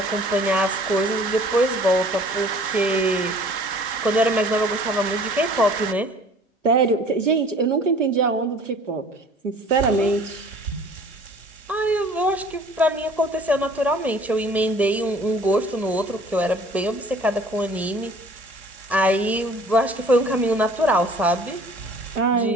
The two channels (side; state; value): both; normal; correlation 0.51